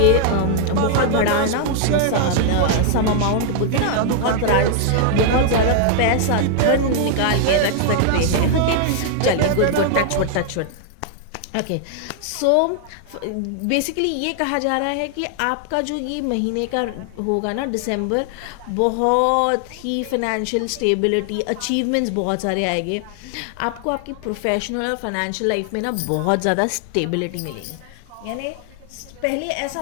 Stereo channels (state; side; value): different; both; correlation 0.00